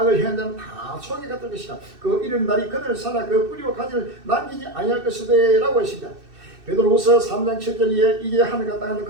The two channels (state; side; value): late; left; 2.6 ms